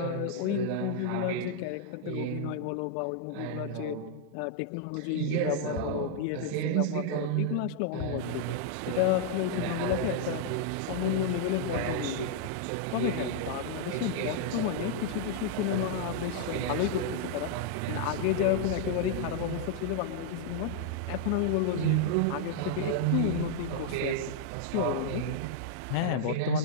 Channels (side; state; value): both; different; correlation -0.01